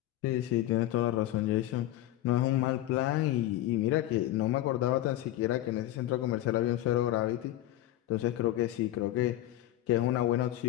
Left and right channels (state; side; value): quieter; right; 14.3 dB